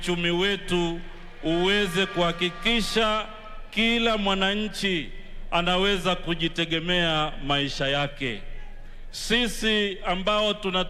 wetu uweze kuhakikisha kila mwananchi anaweza kujitegemea maisha yake. Sisi ambao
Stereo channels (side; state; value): both; identical; correlation 1.00